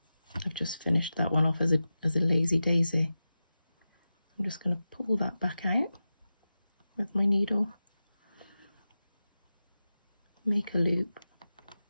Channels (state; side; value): inverted; both; correlation -0.93